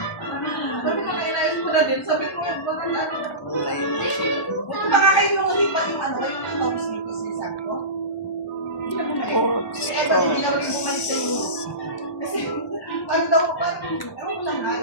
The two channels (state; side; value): late; right; 1.0 ms